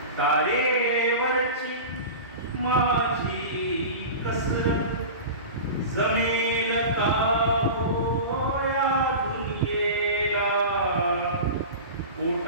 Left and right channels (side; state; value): both; inverted; correlation -0.31